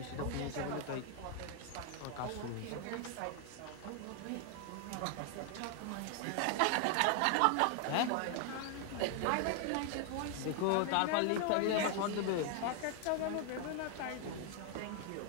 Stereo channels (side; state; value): both; different; correlation 0.00